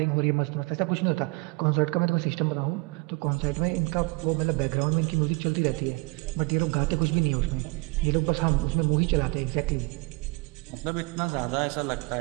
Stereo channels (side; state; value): left; quieter; 27.5 dB